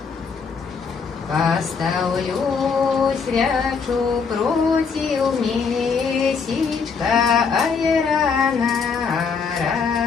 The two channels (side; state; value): right; quieter; 5.5 dB